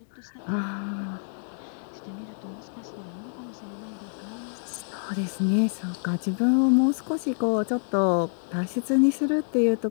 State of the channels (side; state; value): right; silent; digital silence